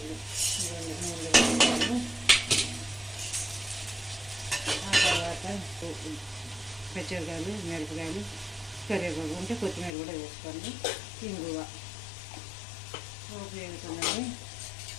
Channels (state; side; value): drops out; right; at 10.0 s